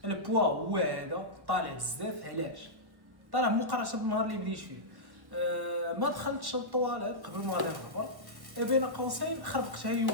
البوا هو هذا طالع بزاف. علاش طالع مقارنه بالنهار اللي بديت فيه؟ ما دخلتش للطواليت قبل ما غادي نهبط، بين قوسين خربقتها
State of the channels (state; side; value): late; left; 1.1 ms